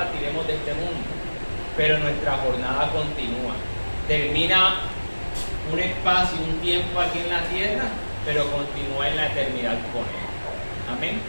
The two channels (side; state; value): both; inverted; correlation -1.00